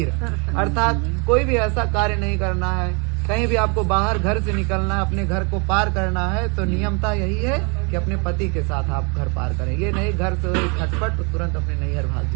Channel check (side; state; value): left; quieter; 32.9 dB